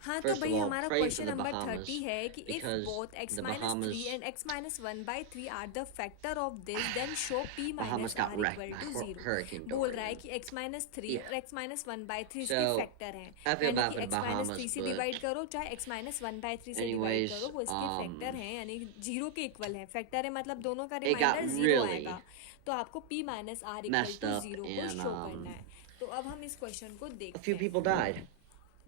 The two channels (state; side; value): different; both; correlation 0.00